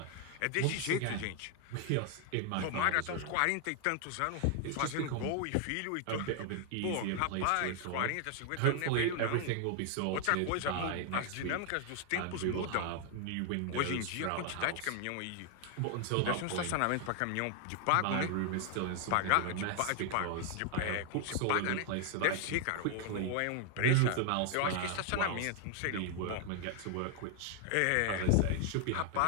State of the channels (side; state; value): both; different; correlation 0.00